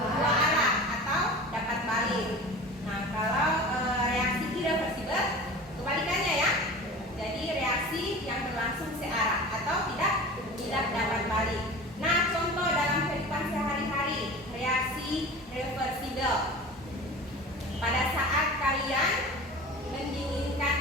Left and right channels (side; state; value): both; normal; correlation 0.36